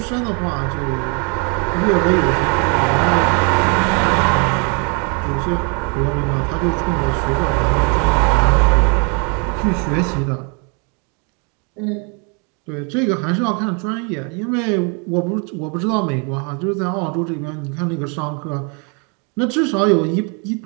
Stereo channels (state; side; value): quieter; left; 35.4 dB